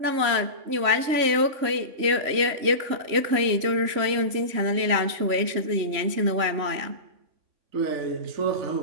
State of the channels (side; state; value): left; late; 3.0 ms